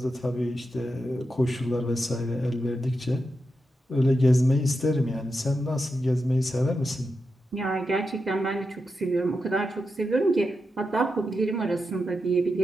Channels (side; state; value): both; normal; correlation 0.87